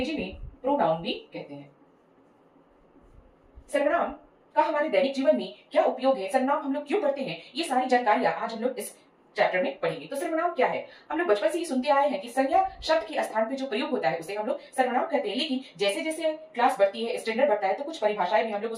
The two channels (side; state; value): both; identical; correlation 1.00